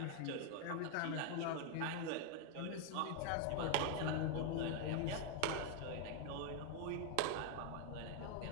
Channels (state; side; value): different; both; correlation 0.00